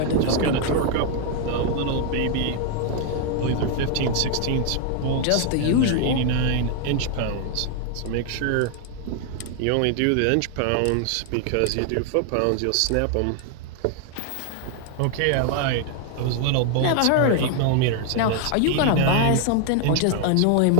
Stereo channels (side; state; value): both; different; correlation 0.00